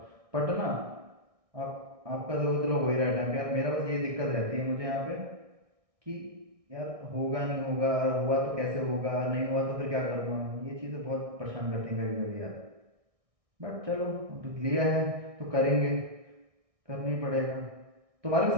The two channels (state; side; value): late; left; 1.6 ms